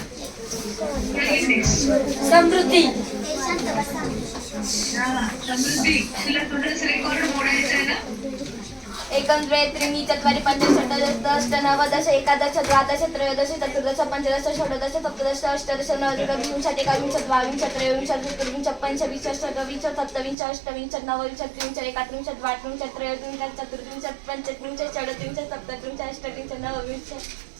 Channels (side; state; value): left; drops out; at 20.4 s